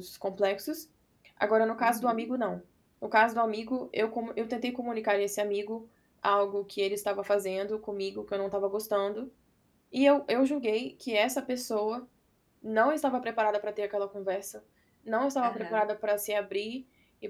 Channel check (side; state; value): both; identical; correlation 1.00